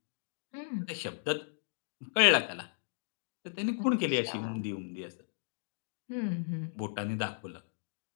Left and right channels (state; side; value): silent; right; digital silence